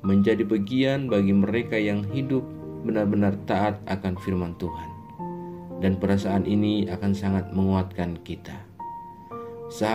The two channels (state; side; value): identical; both; correlation 1.00